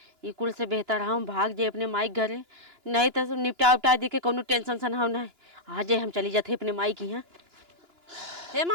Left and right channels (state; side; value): late; left; 2.9 ms